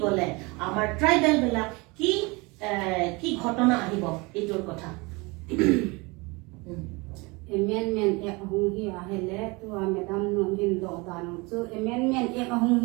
গলে আমাৰ ট্ৰাইবেল বিলাক কি কি ঘটনা আহিব এইটোৰ কথা amendment ek hung hi ahele tu madam no hin do danu chu amendment ek hung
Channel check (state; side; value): quieter; left; 26.3 dB